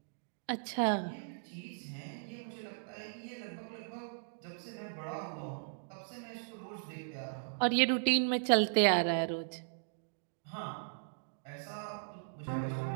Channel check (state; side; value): silent; left; digital silence